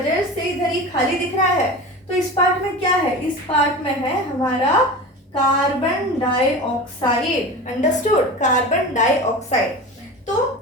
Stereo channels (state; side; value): normal; both; correlation 0.31